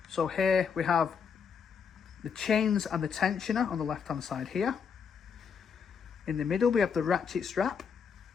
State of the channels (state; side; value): quieter; right; 6.5 dB